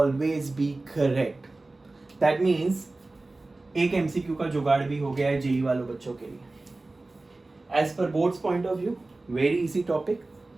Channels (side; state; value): left; quieter; 3.1 dB